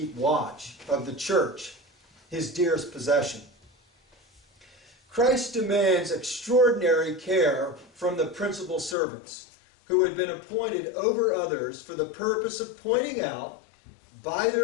watch of the church, his dearest possession. Christ demands extraordinary care from the principal servants who had been appointed over others for the purpose of pointing out, by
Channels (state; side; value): drops out; right; at 9.0 s